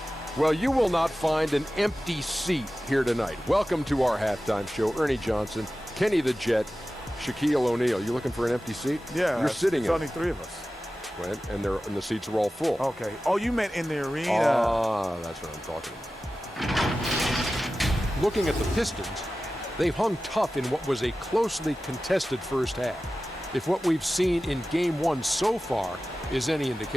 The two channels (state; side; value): normal; both; correlation 0.95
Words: Well, you will not find an empty seat here tonight. Welcome to our halftime show. Ernie Johnson, Kenny the Jet, Shaquille O'Neal. You looking for an empty seat? Yeah. You're sitting in. There's only 3 of us. And the seats are all full. Okay. Oh, you meant in the arena. Ah, that's what I'm talking about. Looking at the Pistons, they've hung tough in what was a closely contested first half. If what we've seen in Game 1 so far is any